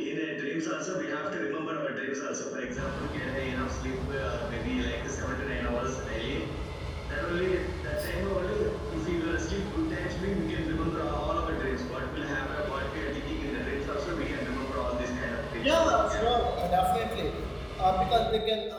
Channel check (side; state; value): both; identical; correlation 1.00